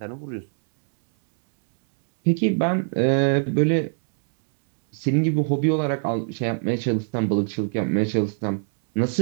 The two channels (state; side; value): silent; left; 64 dB below the other